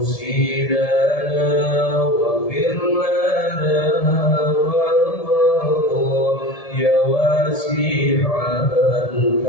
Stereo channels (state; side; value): late; right; 1.7 ms